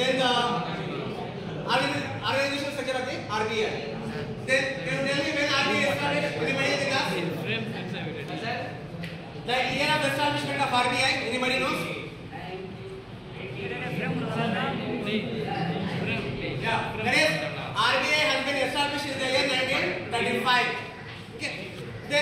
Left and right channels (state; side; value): identical; both; correlation 1.00